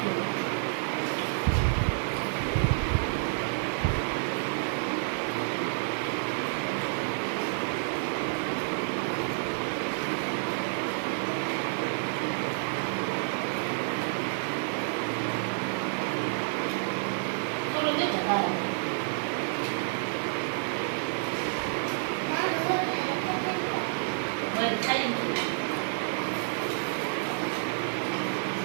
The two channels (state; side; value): silent; left; digital silence